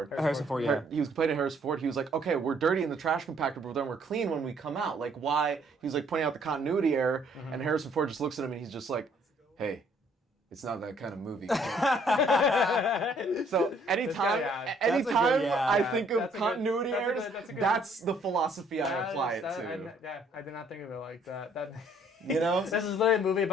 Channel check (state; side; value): normal; both; correlation 0.63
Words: Harrison Ford, yeah. He was complaining to Harrison Ford. He was like, okay, we're dirty in the trash compactor, but then we're clean when we come out. Like, why? He was like pointing out the continuity error, and Harrison Ford just looks at him and he's just like, hey, it's not that kind of movie. So anytime, yeah. anytime yeah. I think of That's a good- continuity that's a errors, good- that's a good- that's the philosophy I That apply is- it that- to. I did not think of it like that. That You know? this is literally a movie